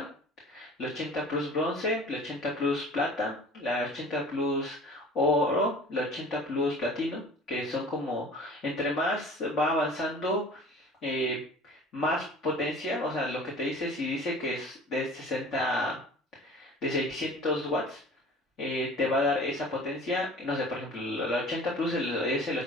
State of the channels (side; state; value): both; normal; correlation 0.44